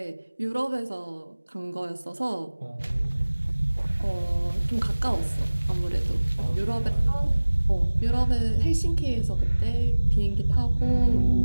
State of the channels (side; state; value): both; inverted; correlation -1.00